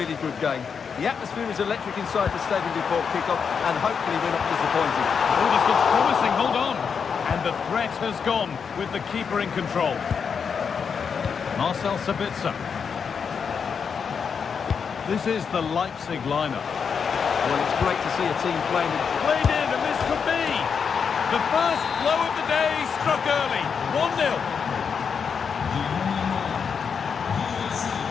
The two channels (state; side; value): quieter; right; 6.4 dB